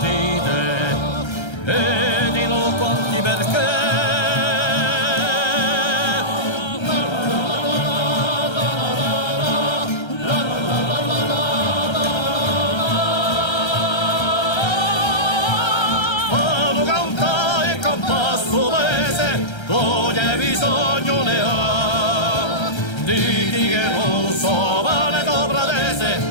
e di no quanti perché. Ogni bisogno ne ha, diti che non so vale dopradese,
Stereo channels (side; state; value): right; late; 1.3 ms